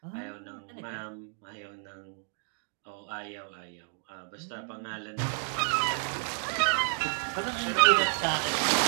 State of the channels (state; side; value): silent; left; 57 dB below the other